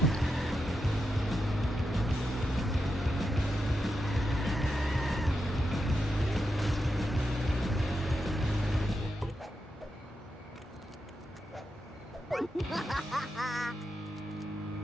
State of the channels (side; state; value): both; normal; correlation 0.87